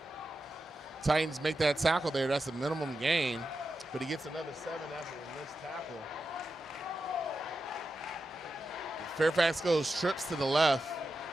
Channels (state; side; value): normal; both; correlation 0.90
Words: Titans make that tackle there. That's a minimum gain, but he gets another 7 after the missed tackle. Fairfax goes, trips to the left,